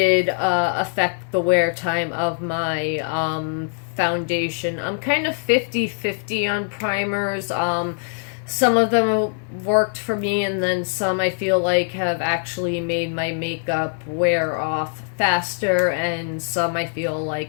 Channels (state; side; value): silent; right; 64 dB below the other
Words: affect the wear time of my foundation. I'm kind of 50-50 on primers. Some of them worked for me, and then some I feel like have actually made my makeup wear off faster, and some I feel